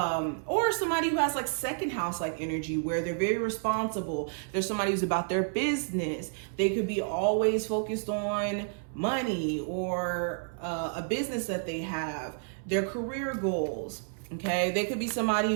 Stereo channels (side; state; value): left; silent; 58 dB below the other